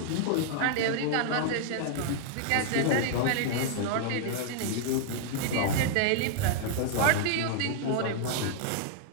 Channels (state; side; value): different; both; correlation 0.00